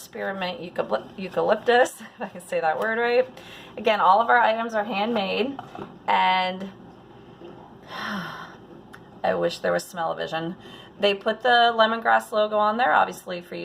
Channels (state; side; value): identical; both; correlation 1.00